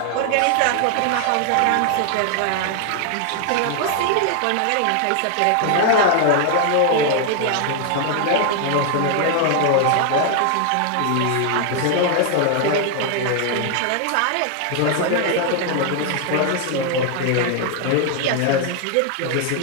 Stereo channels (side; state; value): both; different; correlation 0.00